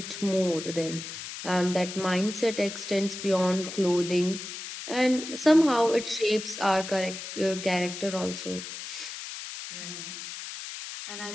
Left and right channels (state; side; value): noise; left; hiss, 9 dB below the sound